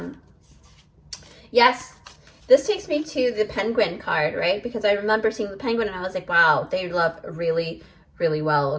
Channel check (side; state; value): both; identical; correlation 1.00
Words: this takes me to the penguin card, right? Because I remember seeing the penguin and I was like, wow, they love really, really well,